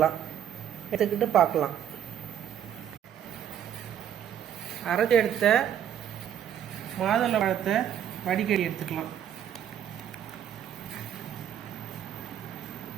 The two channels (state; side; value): quieter; left; 9.8 dB